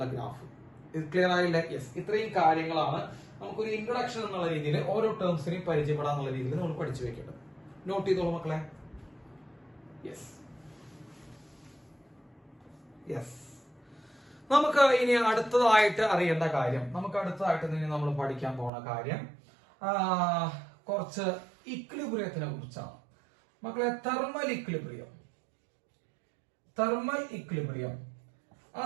ഗ്രാഫ്. ക്ലിയർ ആയില്ലേ? യെസ്. ഇത്രയും കാര്യങ്ങളാണ് നമുക്കൊരു ഇൻട്രൊഡക്ഷൻ എന്നുള്ള രീതിയിൽ ഓരോ ടേംസിനെയും പരിചയപ്പെടാന്നുള്ള രീതിയിൽ നമ്മൾ പഠിച്ചു വെക്കേണ്ടത്. നോട്ട് ചെയ്തോളൂ മക്കളെ. യെസ്. നമുക്ക് ഇനി അടുത്തതായിട്ട് അറിയേണ്ട കാര്യം, നമ്മൾ പഠിക്കാൻ പോണ കാര്യം കുറച്ച് ഇക്വിലിബ്രിയത്തിനെ കുറിച്ചാണ് മക്കളെ. തെർമൽ ഇക്വിലിബ്രിയം,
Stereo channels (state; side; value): drops out; left; at 18.7 s